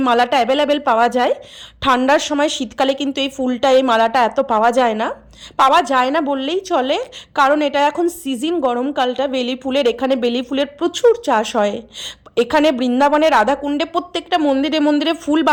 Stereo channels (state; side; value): identical; both; correlation 1.00